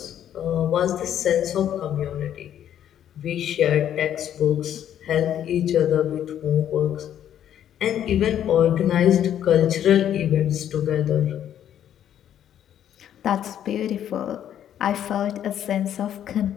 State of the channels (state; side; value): quieter; right; 10.4 dB